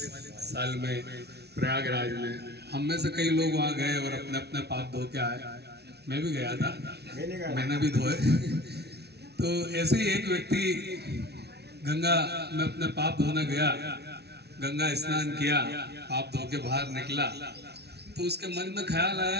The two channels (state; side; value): late; left; 0.49 ms